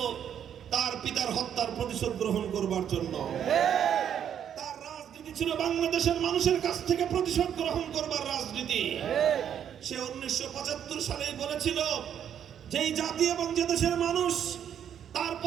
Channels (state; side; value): quieter; left; 9.1 dB